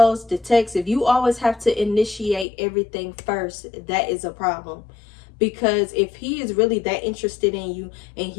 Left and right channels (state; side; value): drops out; right; at 2.5 s